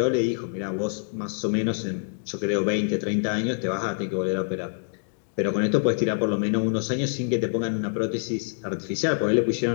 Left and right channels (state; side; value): silent; right; digital silence